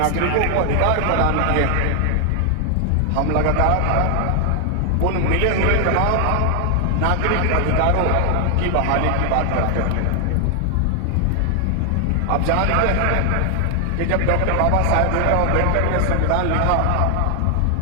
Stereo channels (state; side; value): different; both; correlation 0.00